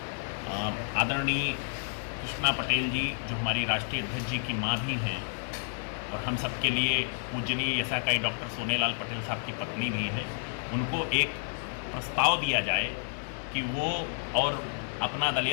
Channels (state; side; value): silent; right; digital silence